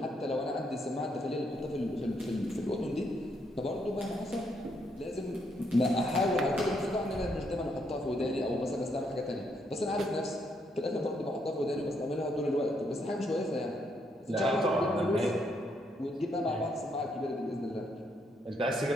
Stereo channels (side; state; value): both; normal; correlation 0.75